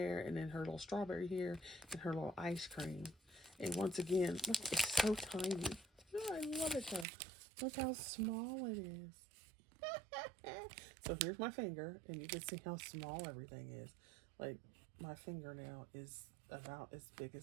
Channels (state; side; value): drops out; left; at 7.1 s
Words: and then her little strawberry here, and her little ice cream. And once again, look, it's so tiny. Oh, I love it though. Look how small it is. So here's my finger, and you can see how small everything is. Like, my fingernail is about as big